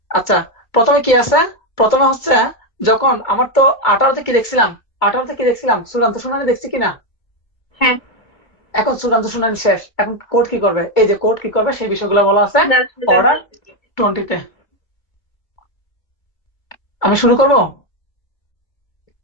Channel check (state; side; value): late; right; 2.3 ms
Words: আচ্ছা, প্রথমে কি আছে, প্রথমে হচ্ছে, যখন আমার তো 18তে কি দেখছিলাম চূড়ান্ত শুনানি দেখছি কিনা। হ্যাঁ, এখন চূড়ান্ত শুনানি শেষ, এখন কোর্ট কি করবে, এই যে কোর্ট কি করবে সেই বিষয়গুলো বলা আছে সেটা অর্ডার বলতেছি। 20-তে। আমি শুরু করব।